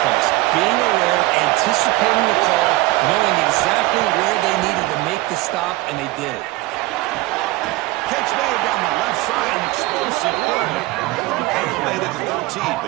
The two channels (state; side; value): quieter; left; 19.6 dB